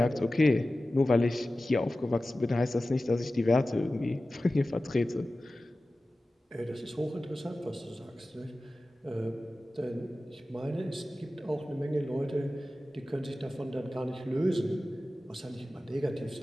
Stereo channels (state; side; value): normal; both; correlation 0.95